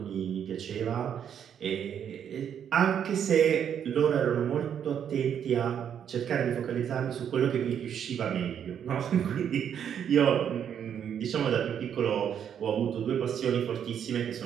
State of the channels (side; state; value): left; quieter; 8.7 dB